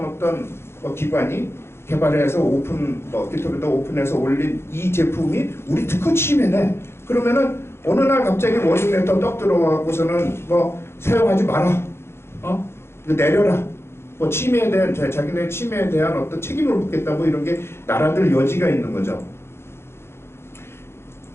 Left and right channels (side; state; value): right; late; 0.12 ms